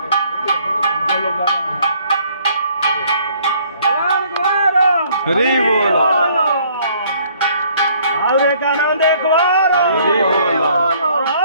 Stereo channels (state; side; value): inverted; both; correlation -0.61